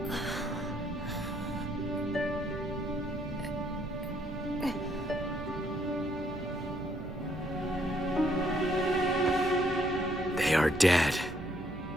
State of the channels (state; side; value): noise; right; hum, 15 dB below the sound